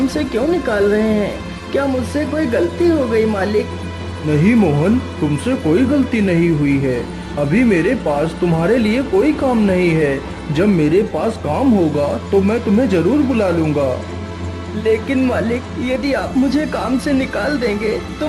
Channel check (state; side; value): identical; both; correlation 1.00